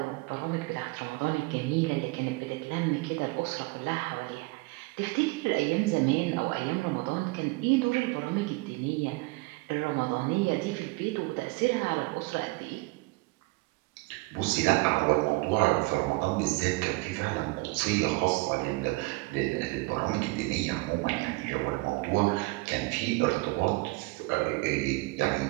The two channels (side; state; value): left; quieter; 24.5 dB